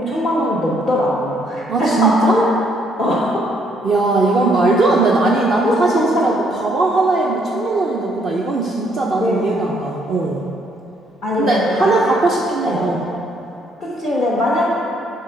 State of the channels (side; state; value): both; normal; correlation 0.69